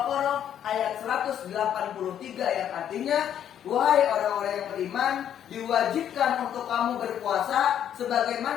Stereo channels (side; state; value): right; quieter; 9.8 dB